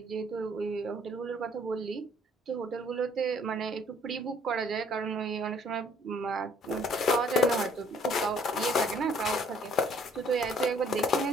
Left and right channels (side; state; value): both; normal; correlation 0.61